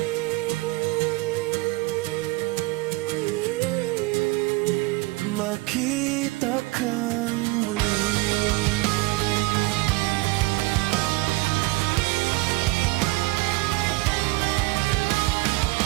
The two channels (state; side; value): quieter; left; 22.0 dB